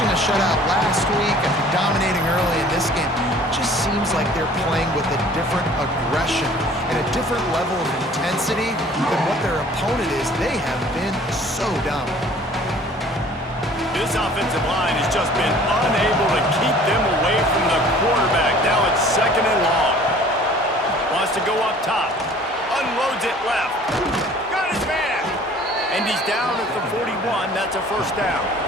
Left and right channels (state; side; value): normal; both; correlation 0.51